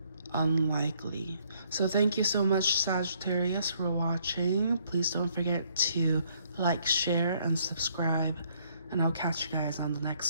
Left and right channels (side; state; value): both; inverted; correlation -0.68